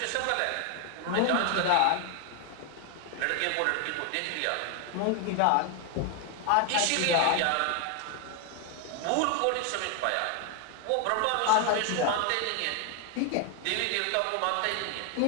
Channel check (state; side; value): different; both; correlation 0.01